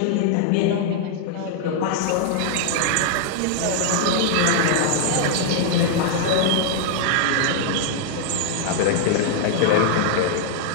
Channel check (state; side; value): different; both; correlation 0.00